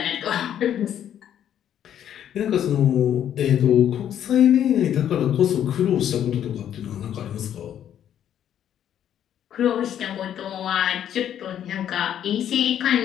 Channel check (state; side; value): quieter; right; 10.2 dB